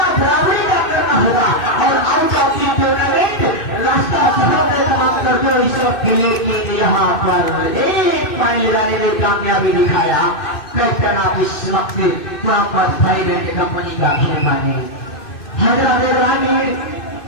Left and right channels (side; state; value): right; late; 2.6 ms